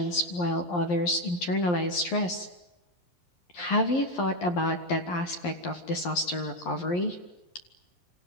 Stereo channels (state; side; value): late; right; 11 ms